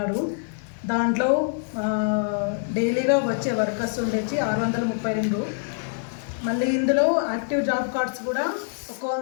దాంట్లో డైలీగా వచ్చే వర్కర్స్ ఉండేసి 632. మళ్ళీ ఇందులో యాక్టివ్ జాబ్ కార్డ్స్ కూడా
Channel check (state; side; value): silent; right; 61 dB below the other